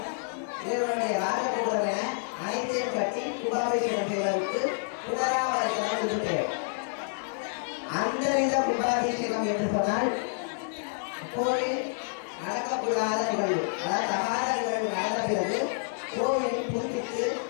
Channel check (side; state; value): right; silent; digital silence